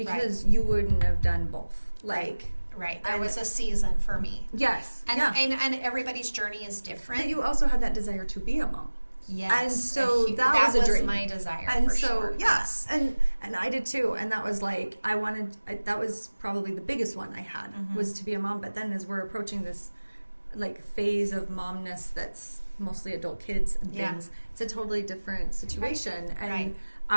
you wouldn't have done both. There was a season for me. Yes. And everybody's journey is different. But you also had that desire to be a mom. Yes. And so that was a dream. My desire, and for so, sure. Yes. And I did too. And that was like, that was probably the biggest one I had, was to be a mom. But then as we're approaching this like phase of momness that's mostly adult kids and things, it's a totally different situation. And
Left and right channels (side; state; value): both; inverted; correlation -1.00